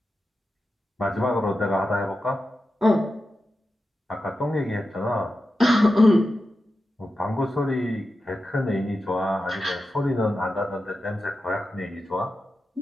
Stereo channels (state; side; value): normal; both; correlation 0.91